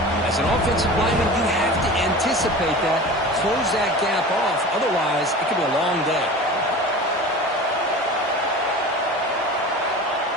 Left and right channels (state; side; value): normal; both; correlation 0.35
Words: As an offensive lineman, you have to anticipate that, close that gap off. Otherwise, it could be a long day.